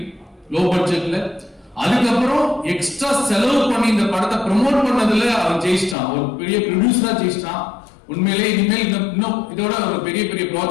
லோ பட்ஜெட்ல. அதுக்கப்புறம் எக்ஸ்ட்ரா செலவு பண்ணி இந்த படத்தை ப்ரமோட் பண்ணதுல அவன் ஜெயிச்சிட்டான், ஒரு பெரிய ப்ரொடியூசரா ஜெயிச்சிட்டான். உண்மையிலே இனிமேல் இன்னும் இதோட ஒரு பெரிய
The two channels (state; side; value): drops out; right; at 6.0 s